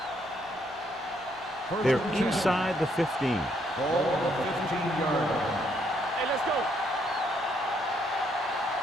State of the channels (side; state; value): both; normal; correlation 0.72